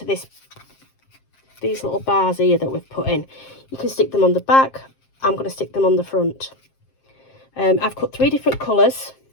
these little bars here that we've put in. You can stick them on the back. I'm going to stick them on the front. I've cut 3 different colours.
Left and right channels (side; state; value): right; late; 7.6 ms